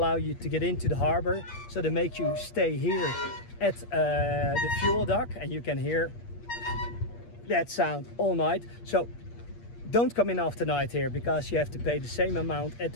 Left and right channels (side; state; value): right; late; 8.5 ms